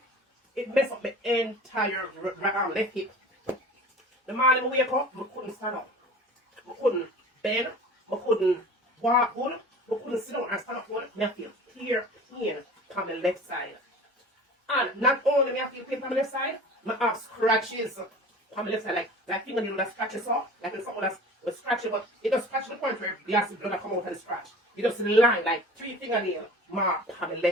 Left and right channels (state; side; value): normal; both; correlation 0.41